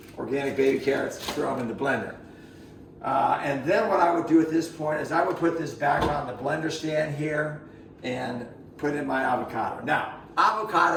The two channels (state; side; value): identical; both; correlation 1.00